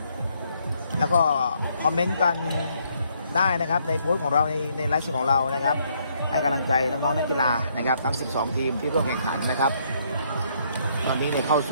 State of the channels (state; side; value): inverted; both; correlation -0.71